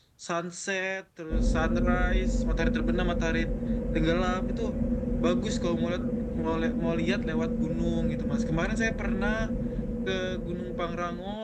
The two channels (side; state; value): both; identical; correlation 1.00